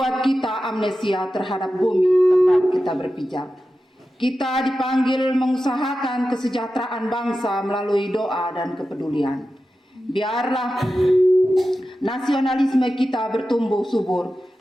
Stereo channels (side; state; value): both; normal; correlation 0.92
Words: kita amnesia terhadap bumi tempat kita berpijak. Kita dipanggil mengusahakan kesejahteraan bangsa melalui doa dan kepedulian. Biarlah nasionalisme kita bertumbuh subur